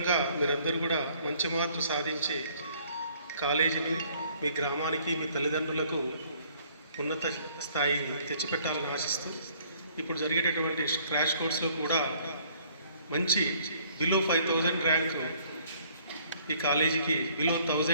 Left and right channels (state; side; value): inverted; both; correlation -0.60